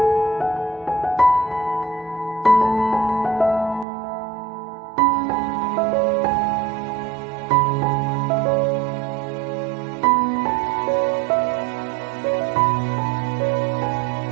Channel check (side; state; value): left; drops out; at 3.9 s